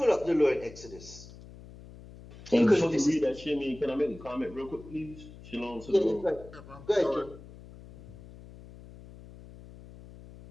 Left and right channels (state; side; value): noise; left; hum, 18 dB below the sound